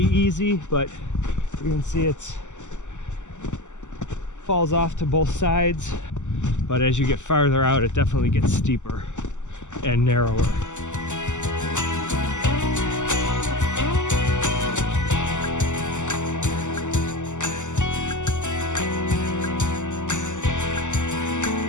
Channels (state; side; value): late; right; 0.84 ms